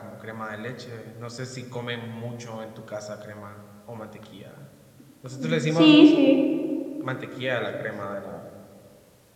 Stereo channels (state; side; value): identical; both; correlation 1.00